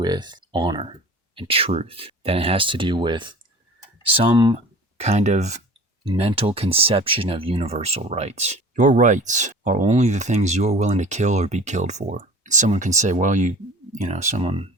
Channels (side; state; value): both; normal; correlation 0.41